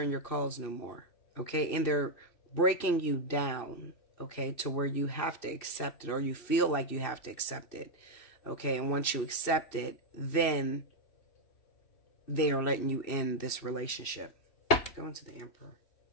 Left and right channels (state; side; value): late; right; 2.7 ms